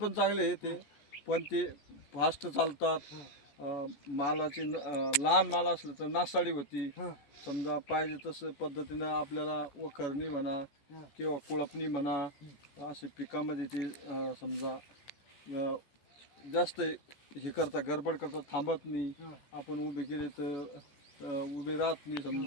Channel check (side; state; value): right; late; 14 ms